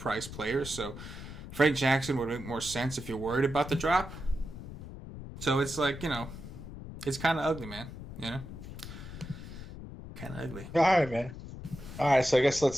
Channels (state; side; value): noise; left; rumble, 12 dB below the sound